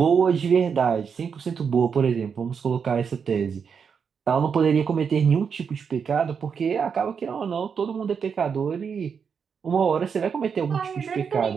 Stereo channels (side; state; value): left; quieter; 6.5 dB